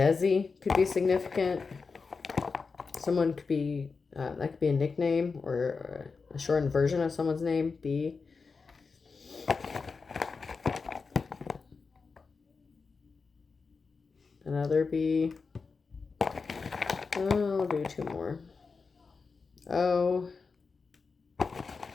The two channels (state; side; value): quieter; right; 4.7 dB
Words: could be significant. Someone could be, that could be a nickname or a shortened version of someone's name. B. Another B. I'll do two more. O.